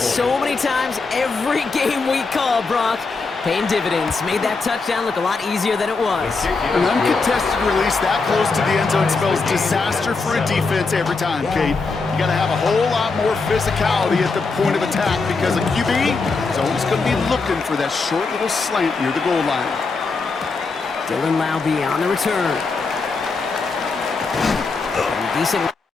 so many times every game we call, Brock. Paying dividends. Made that touchdown look a lot easier than it was. An uncontested release that close to the end zone spells disaster for a defense every time, Kate. You got to have a whole lot more physicality at the point of attack because a QB is always going to be looking for that short little slant near the goal line. Dylan Laube on the return. Decent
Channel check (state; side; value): quieter; right; 4.2 dB